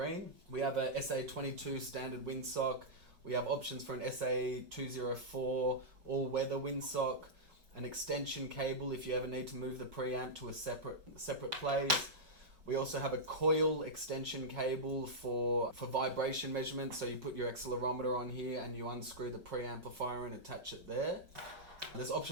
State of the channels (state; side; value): late; left; 5.3 ms